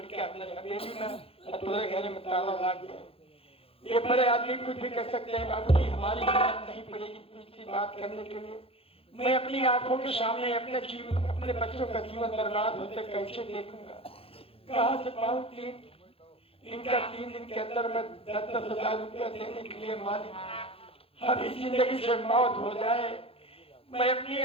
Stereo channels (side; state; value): right; late; 0.27 ms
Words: अंदर हवेली में तुम्हारे घर में ताला लग गया। ये बड़े आदमी कुछ भी कर सकते हैं बाबूजी, हमारी हिम्मत नहीं पड़ेगी दूसरी बात करने के लिए। मैं अपनी आंखों के सामने अपने जीवन अपने बच्चों का जीवन बर्बाद होते कैसे देखूंगा, कहाँ से पाऊँ 3 दिन के अंदर मैं 10,000 रुपया देने के लिए मालिक अभी जिंदगी से मौत हो जाए, मैं अपने